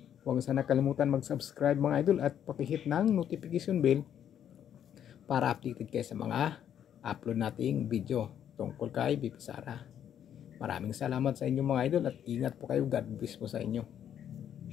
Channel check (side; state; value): right; quieter; 9.6 dB